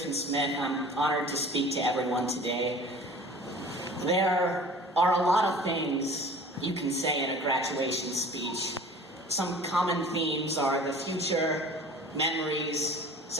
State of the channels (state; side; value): normal; both; correlation 0.45